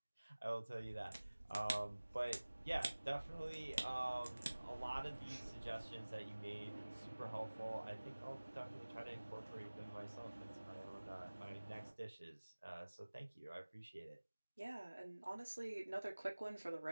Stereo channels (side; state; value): both; inverted; correlation -1.00